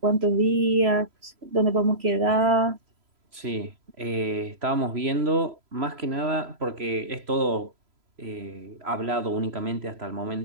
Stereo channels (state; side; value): late; left; 3.0 ms